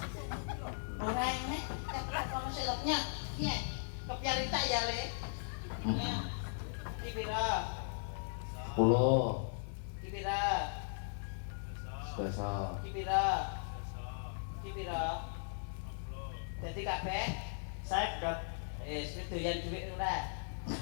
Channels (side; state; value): right; silent; digital silence